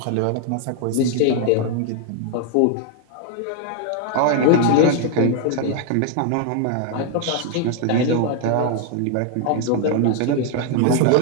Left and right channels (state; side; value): different; both; correlation 0.00